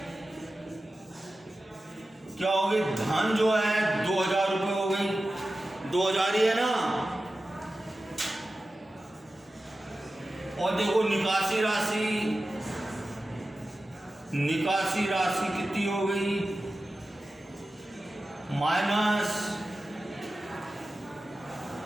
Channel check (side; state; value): both; normal; correlation 0.94